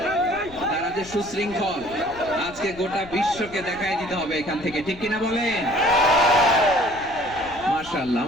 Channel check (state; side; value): noise; left; rumble, 19 dB below the sound